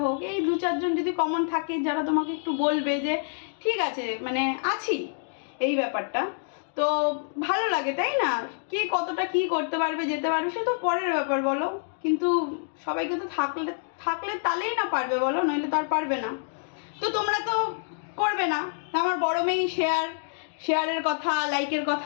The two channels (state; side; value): silent; right; digital silence